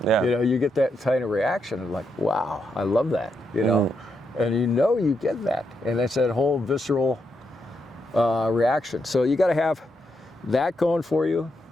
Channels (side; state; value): both; normal; correlation 0.81